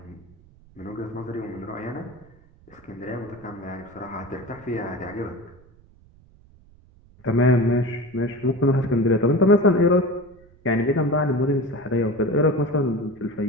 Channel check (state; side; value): noise; right; rumble, 27 dB below the sound